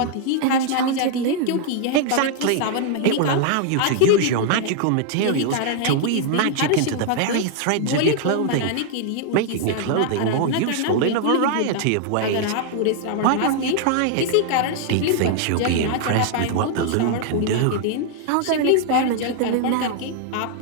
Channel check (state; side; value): different; both; correlation 0.00